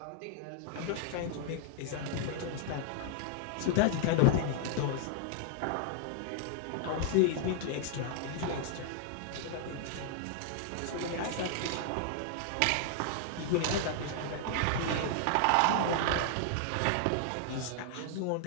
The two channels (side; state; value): both; different; correlation 0.00